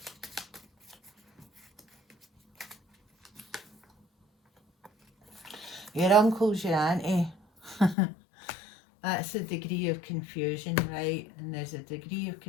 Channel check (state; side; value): drops out; right; at 8.0 s